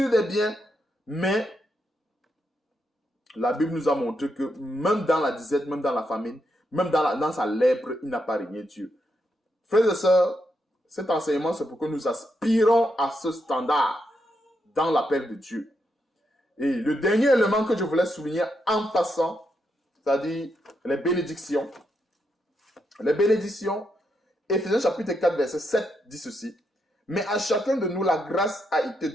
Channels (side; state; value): both; normal; correlation 0.81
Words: de biens, mais la Bible nous a montré que même dans la disette, même dans la famine, même dans sa lèpre, il n'a pas régné Dieu. Frères et sœurs, cet enseignement, c'est pour que nous aspirons à ce standard dans l'appel de Dieu. Et le dernier élément que je voulais souligner en passant, c'est-à-dire les bénédictions. Les bénédictions, Éphésiens chapitre 4, verset 7 dit ceci. Mais à chacun de nous, la grâce a été